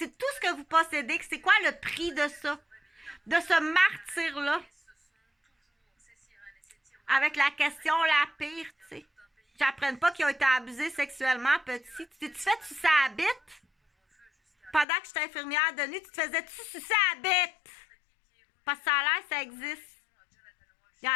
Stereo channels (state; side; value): drops out; right; at 14.9 s